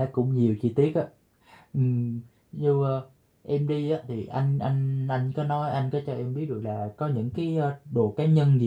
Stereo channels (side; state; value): both; identical; correlation 1.00